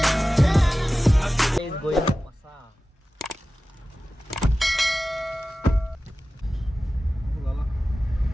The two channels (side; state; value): both; normal; correlation 0.96